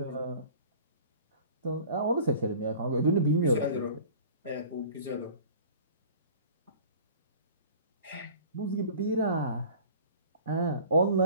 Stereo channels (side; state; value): both; inverted; correlation -0.44